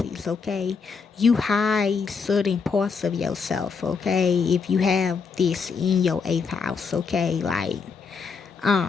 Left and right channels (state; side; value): quieter; right; 5.3 dB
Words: okay? You hide certain parts of yourself, okay? If you have this in your 8th house, okay? Like,